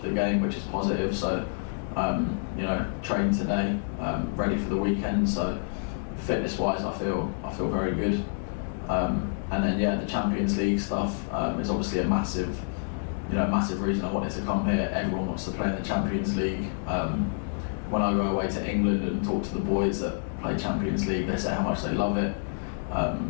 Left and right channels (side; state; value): right; silent; digital silence